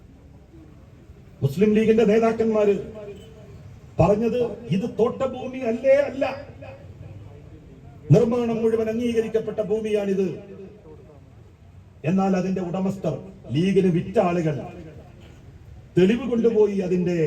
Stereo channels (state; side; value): identical; both; correlation 1.00